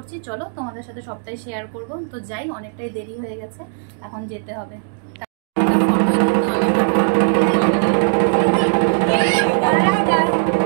চলো তোমাদের সাথে সবটাই শেয়ার করব। তো যাই, অনেকটাই দেরি হয়ে গেছে, এখন যেতে হবে।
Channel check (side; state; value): left; silent; 66 dB below the other